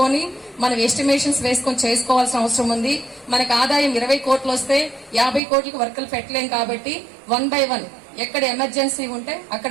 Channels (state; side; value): drops out; left; at 5.4 s